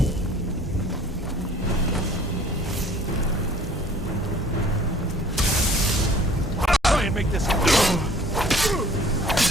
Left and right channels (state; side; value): normal; both; correlation 0.51